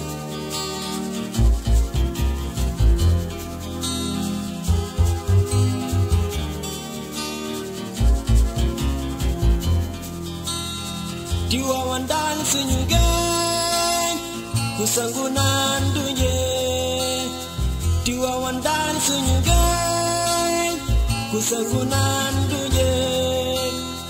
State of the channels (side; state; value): both; identical; correlation 1.00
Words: Tiwaawan daan suñu gën ku sangu naan du njee Tiwaawan daan suñu gën ku sangu naan du njee